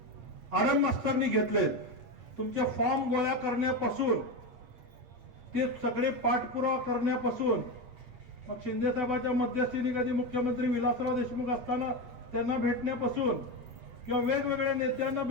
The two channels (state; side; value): late; left; 8.5 ms